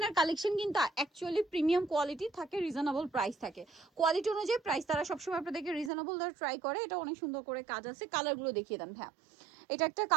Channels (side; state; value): left; drops out; at 5.9 s